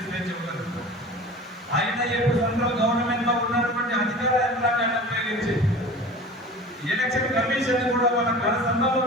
స్వేచ్ఛ ఉన్నది. ఆయన ఇప్పుడు సెంట్రల్ గవర్నమెంట్ లో ఉన్నటువంటి అధికార యంత్రాంగాన్ని ఉపయోగించి ఎలక్షన్ కమిషన్ కూడా మన కనసంలో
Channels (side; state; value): both; normal; correlation 0.38